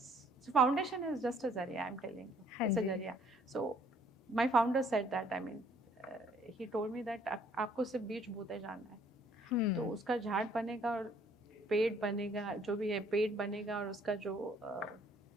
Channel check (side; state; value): both; normal; correlation 0.61